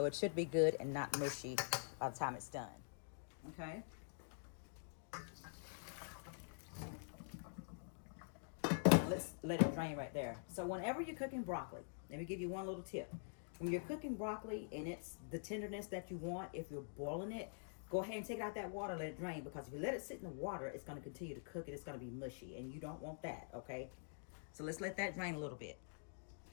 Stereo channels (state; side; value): silent; right; digital silence